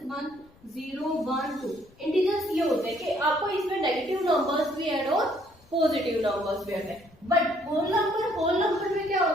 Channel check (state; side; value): noise; left; rumble, 29 dB below the sound